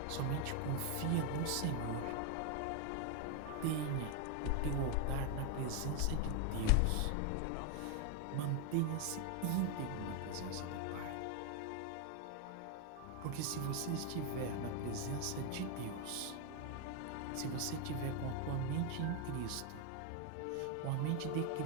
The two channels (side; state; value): both; different; correlation 0.01